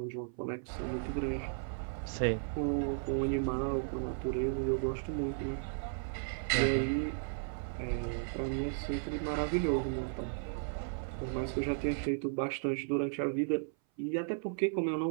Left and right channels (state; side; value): silent; left; 54 dB below the other